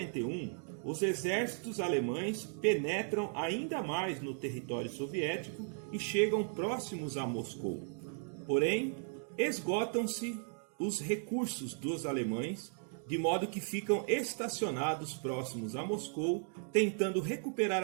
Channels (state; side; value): silent; left; 54 dB below the other